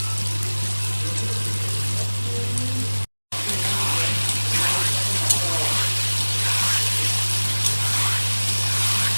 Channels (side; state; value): both; inverted; correlation -1.00